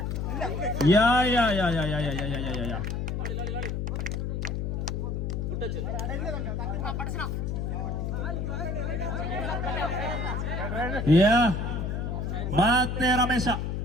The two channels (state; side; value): noise; left; hum, 2 dB below the sound